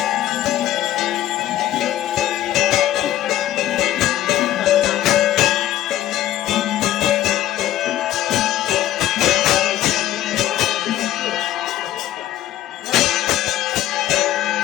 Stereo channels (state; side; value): quieter; right; 13.3 dB